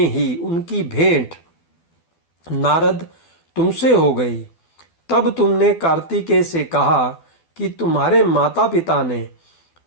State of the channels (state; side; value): late; right; 12 ms